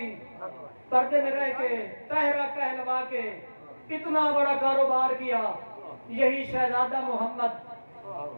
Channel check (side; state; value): both; inverted; correlation -1.00